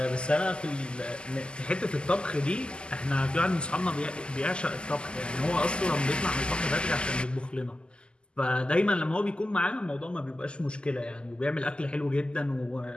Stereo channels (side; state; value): right; late; 0.050 ms